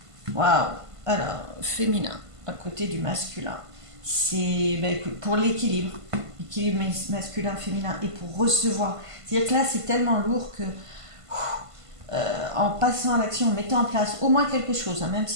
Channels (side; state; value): left; late; 1.5 ms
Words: waouh. Alors, féminin, à côté du masculin, c'est ben, pour l'équilibre, l'équilibre masculin-féminin et pour recevoir. C'est-à-dire que là c'est tellement lourd que en passant à l'action, en mettant en place au moins quelque chose, hein, même